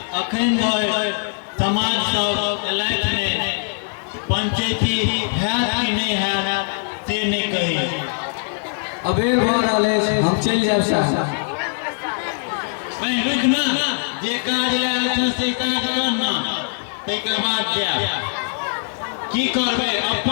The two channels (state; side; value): silent; right; digital silence